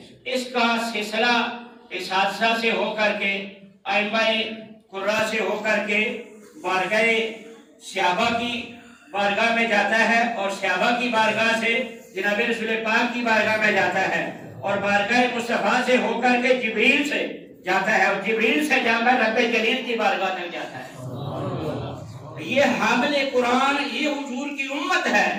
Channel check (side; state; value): both; identical; correlation 1.00